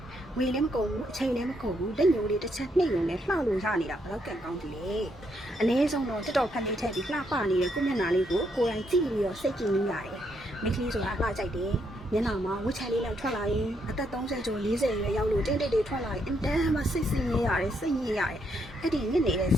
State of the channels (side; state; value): both; normal; correlation 0.76